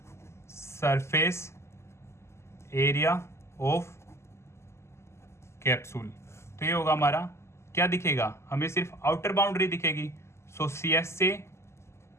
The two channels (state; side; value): late; right; 0.13 ms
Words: surface area of capsule, तो ये होगा हमारा क्या दिखेगा हमें सिर्फ आउटर बाउंड्री दिखेगी। सो CSA